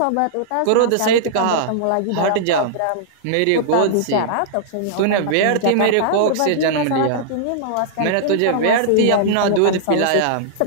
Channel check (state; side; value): different; both; correlation -0.02